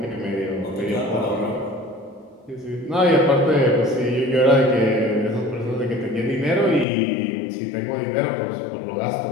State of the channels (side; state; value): right; drops out; at 6.9 s